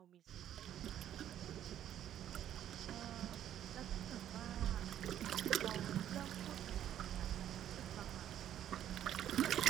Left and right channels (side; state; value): left; quieter; 11.0 dB